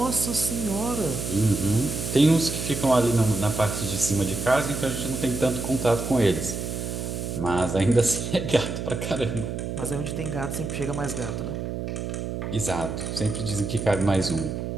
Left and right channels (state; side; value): noise; right; hum, 4 dB below the sound